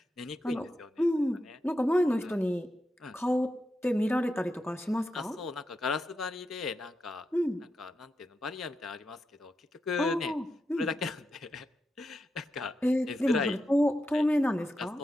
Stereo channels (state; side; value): normal; both; correlation 0.87